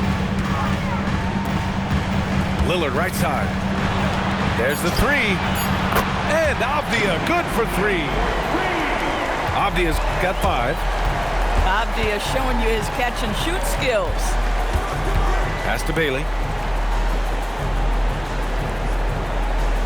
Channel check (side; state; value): both; identical; correlation 1.00